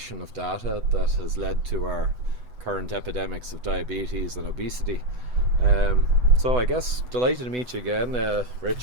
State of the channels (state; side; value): late; left; 8.0 ms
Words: of data that has led to our current epidemics of diabetes and obesity. So I guess delighted to meet you again,